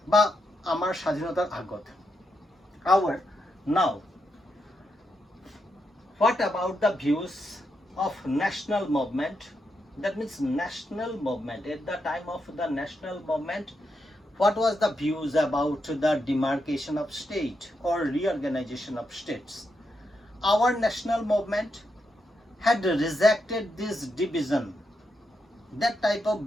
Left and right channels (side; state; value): both; normal; correlation 0.83